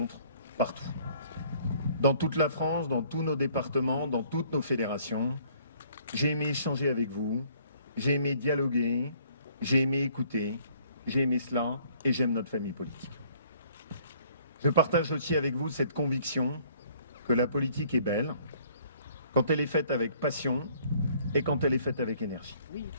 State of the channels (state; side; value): inverted; both; correlation -0.60